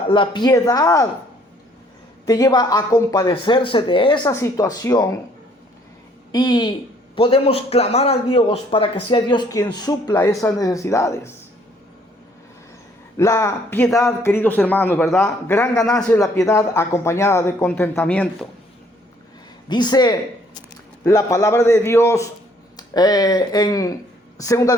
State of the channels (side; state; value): both; normal; correlation 0.63